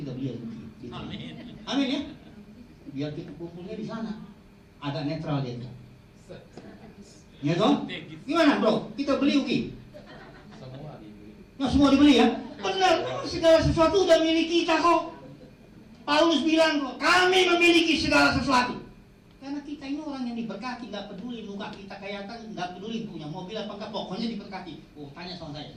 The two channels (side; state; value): both; identical; correlation 1.00